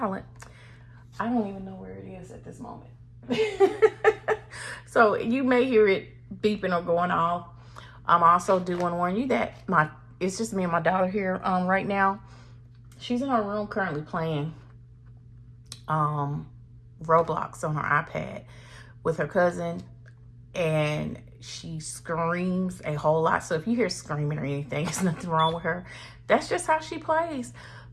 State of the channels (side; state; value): both; identical; correlation 1.00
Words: I don't even know where it is at this moment. So you may hear it beeping or going off. I'm also do want to warn you that it's just me and my daughter here right now. She's in her room currently playing Roblox on her iPad with her cousin, and she screams a whole lot. So if you hear screaming or anything, there's nothing wrong with her. That's just how she plays.